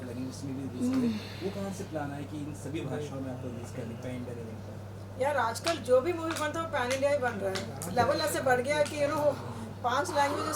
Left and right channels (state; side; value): identical; both; correlation 1.00